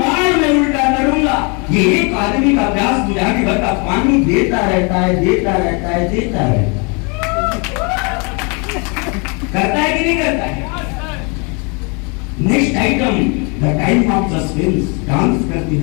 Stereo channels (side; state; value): right; quieter; 32.7 dB